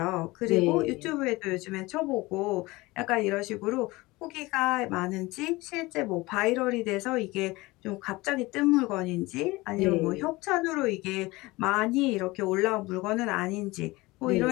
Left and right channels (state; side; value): quieter; right; 21.4 dB